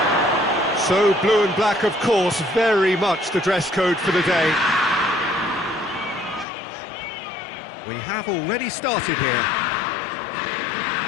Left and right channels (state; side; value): drops out; right; at 6.5 s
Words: So blue and black, of course, very much the dress code for the day. We have already started here.